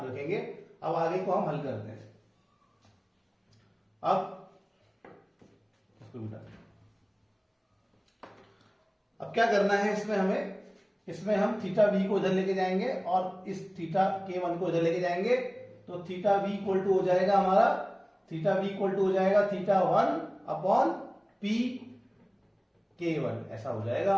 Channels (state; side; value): identical; both; correlation 1.00